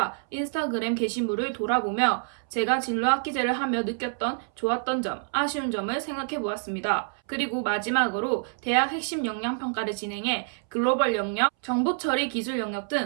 인스타그램 게시물을 돌아보며 제가 진로학기제를 하며 느꼈던 좋았던 점, 아쉬운 점을 생각해 보았습니다. 그리고 마지막으로 대학 핵심 역량평가를 진행해 글로벌 영역, 정보처리 기술 영역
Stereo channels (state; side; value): silent; left; 60 dB below the other